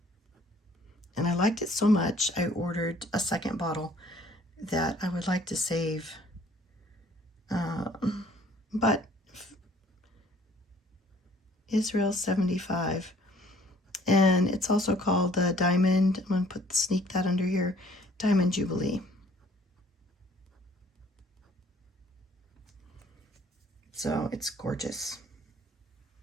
I liked it so much, I ordered a second bottle that I would like to save. But Israel 75. And it's also called the Diamond, I'm going to sneak that under here, Diamond Jubilee. So it's gorgeous.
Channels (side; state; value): both; normal; correlation 0.58